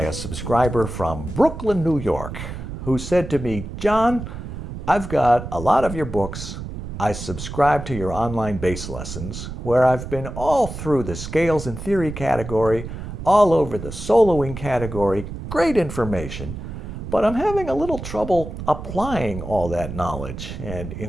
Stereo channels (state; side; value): noise; right; rumble, 8 dB below the sound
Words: a subscriber from Brooklyn, New York, who said to me, "Jon, I've got a lot of your books. I subscribe to your online bass lessons, where I've been all through the scales and theory category, all over the soloing category, great information, but I'm having a little trouble applying all that knowledge and